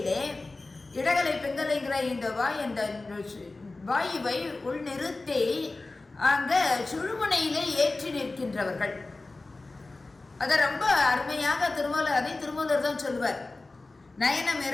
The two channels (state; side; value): quieter; right; 3.3 dB